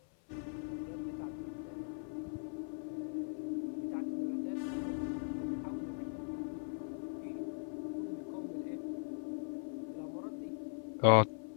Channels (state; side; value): silent; right; 51 dB below the other